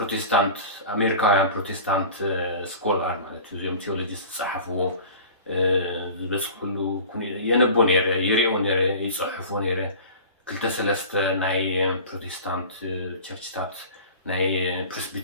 ኣሜሪካውያን ፕሮቴስታንት ስኮላር ማለት እዩ እዚኦም ቴዎሎጂስት ዝፀሓፍዎ ዝበፅሕሉ የነቦ ነይረ ይሪኦ ነይረ ይፅሕፎ ነይረ ክልተ ሰለስተ ናይ ፕሮቴስታንት ቸርችታት ናይ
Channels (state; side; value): inverted; both; correlation -0.39